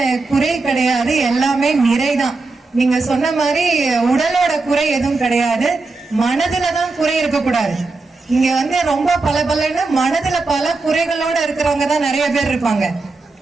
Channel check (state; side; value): quieter; left; 3.7 dB